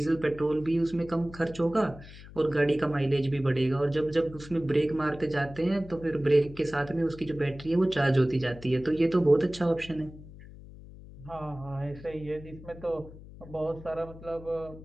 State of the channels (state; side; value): noise; left; hum, 17 dB below the sound